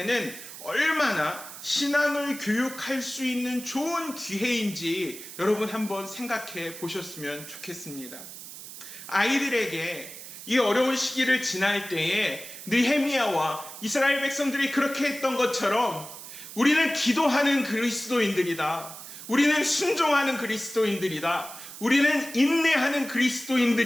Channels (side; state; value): right; noise; hiss, 13 dB below the sound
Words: 얼마나 신앙을 교육할 수 있는 좋은 기회인지 여러분 한번 생각해 보셨으면 좋겠습니다. 아이들에게 이 어려운 시기를 지날 때에 느헤미야와 이스라엘 백성들이 그렇게 했던 것처럼 우리는 기도하는 그리스도인들이다. 우리는 순종하는 그리스도인들이다. 우리는 인내하는